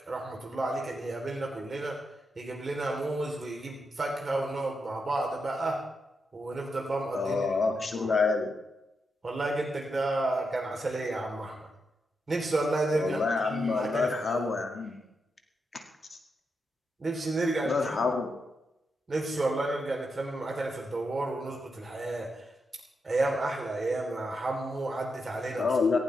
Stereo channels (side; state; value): both; normal; correlation 0.84